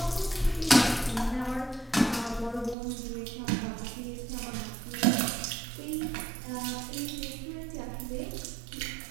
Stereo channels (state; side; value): drops out; left; at 2.8 s